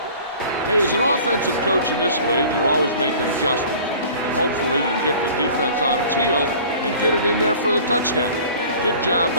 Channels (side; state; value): both; inverted; correlation -0.45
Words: Hey, as an offensive coach in this league, you're always making adjustments. And hopefully you can get the defense on its heels and get it in there for the touchdown. Good job